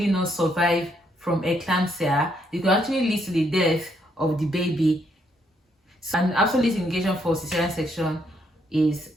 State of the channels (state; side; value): normal; both; correlation 0.73